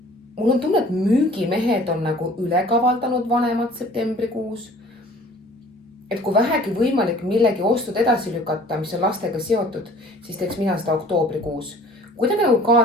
mul on tunne, et müügimehed on nagu ülekavaldanud vanemad septembrikuus. Et kui vähegi võimalik millegi ostud edasi lükata, mis on lastega seotud, siis teeks mina seda oktoobrikuus. Kuidagi nagu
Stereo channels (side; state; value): both; normal; correlation 0.50